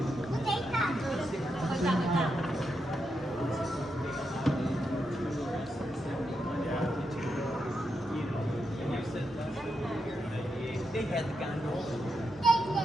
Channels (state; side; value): normal; both; correlation 0.85